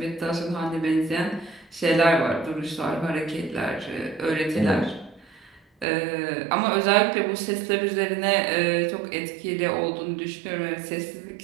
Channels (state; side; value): drops out; left; at 5.9 s